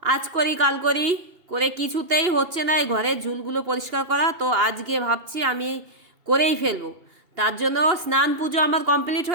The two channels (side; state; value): left; late; 2.9 ms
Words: আজ করি কাল করি করে কিছুতেই হচ্ছে না এই ঘরের ঝুলগুলো পরিষ্কার করা। তো আজকে ভাবছি আমি করেই ফেলবো। তার জন্য স্নান পুজো আমার কমপ্লিট